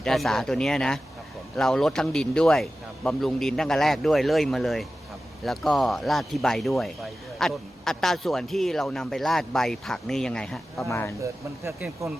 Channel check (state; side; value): normal; both; correlation 0.94